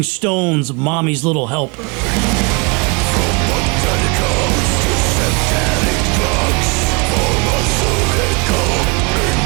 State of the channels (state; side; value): quieter; left; 29.8 dB